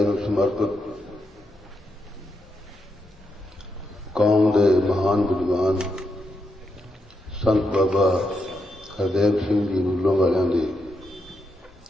ਸਮਰਪਿਤ ਕੌਮ ਦੇ ਮਹਾਨ ਵਿਦਵਾਨ ਸੰਤ ਬਾਬਾ ਹਰਦੇਵ ਸਿੰਘ ਜੀ ਨੂਲੋਂ ਵਾਲਿਆਂ ਦੇ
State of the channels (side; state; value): both; normal; correlation 0.83